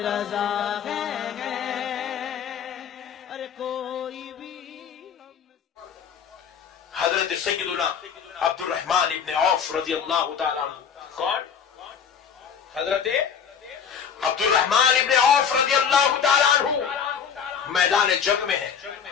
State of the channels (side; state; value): right; quieter; 7.4 dB